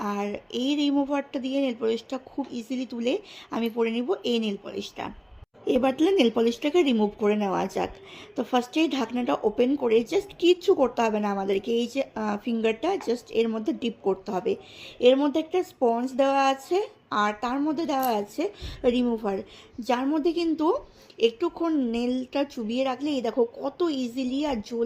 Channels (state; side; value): identical; both; correlation 1.00